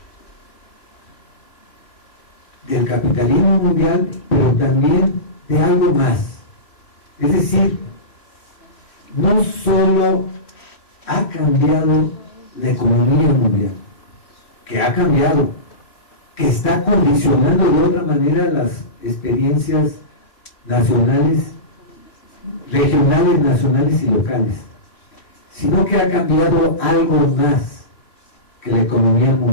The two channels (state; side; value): late; right; 3.1 ms